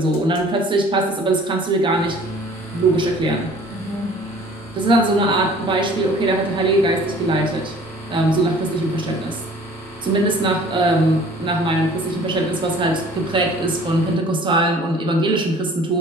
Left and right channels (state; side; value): normal; both; correlation 0.50